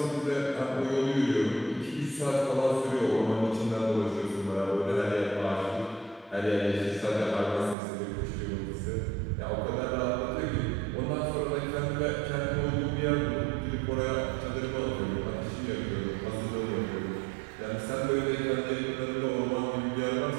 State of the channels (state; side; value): drops out; left; at 7.8 s